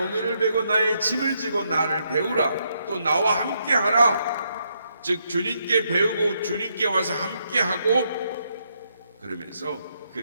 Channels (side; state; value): both; inverted; correlation -0.77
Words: 베고 나의 짐을 지고 나를 배우라, 또 나와 함께 하라. 즉 주님께 배우고 주님께 와서 함께 하고, 그러면서